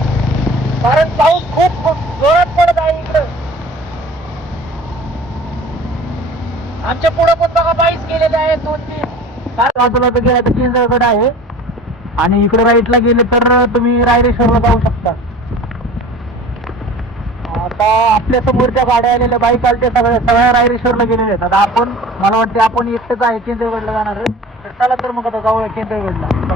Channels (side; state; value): both; normal; correlation 0.42